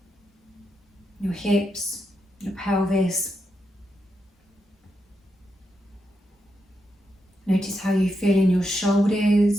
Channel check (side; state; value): both; normal; correlation 0.84